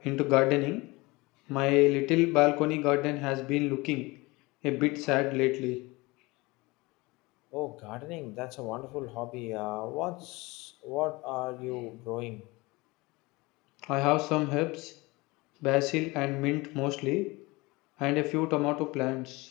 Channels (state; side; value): quieter; right; 23.2 dB